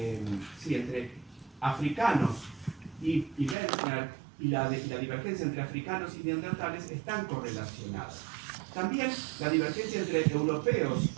africanos y Wendler, y la divergencia entre africanos y neandertales están correlacionadas. También la divergencia entre europeos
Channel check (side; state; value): left; drops out; at 3.6 s